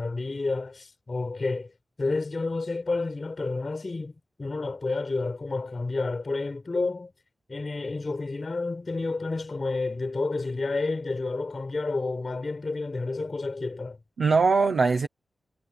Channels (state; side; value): normal; both; correlation 0.92